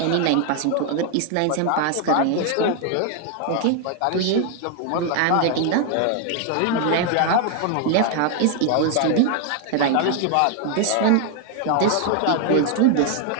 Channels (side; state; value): both; different; correlation 0.00